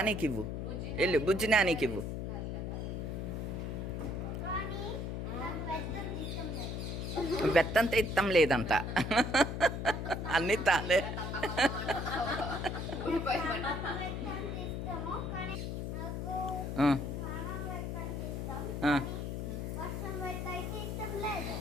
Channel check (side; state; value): left; noise; hum, 3 dB below the sound